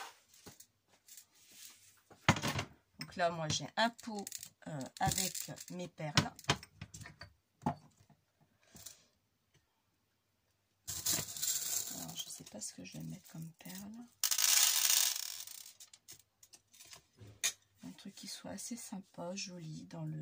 Donc là, moi, j'ai un pot avec mes perles. Alors, je ne sais pas ce que je vais mettre comme perles. Un truc qui soit assez sympa, joli dans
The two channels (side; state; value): both; identical; correlation 1.00